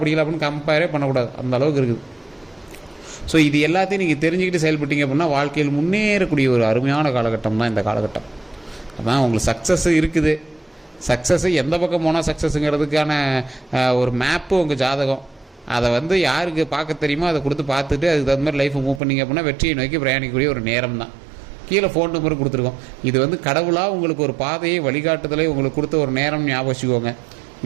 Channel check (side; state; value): left; drops out; at 19.0 s